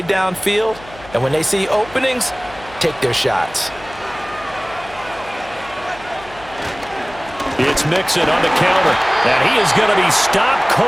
downfield. And when they see openings, take their shots. It's Mixon on the counter. And he is going to be stopped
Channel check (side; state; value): left; noise; hum, 20 dB below the sound